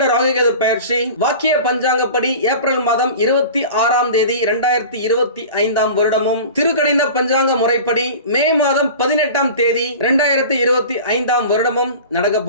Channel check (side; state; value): both; inverted; correlation -0.37